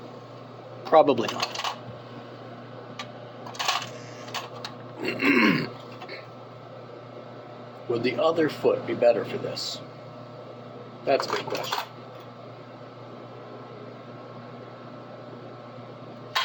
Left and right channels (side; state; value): both; identical; correlation 1.00